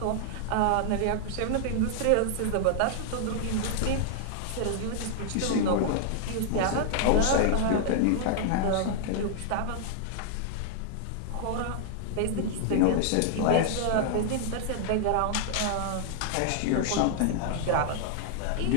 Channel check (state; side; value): different; both; correlation -0.01